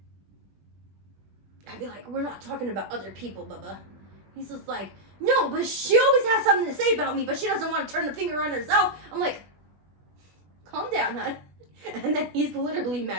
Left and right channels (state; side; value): late; left; 20 ms